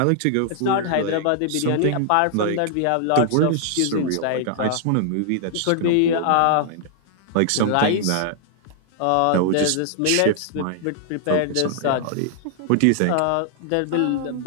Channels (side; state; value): both; different; correlation 0.00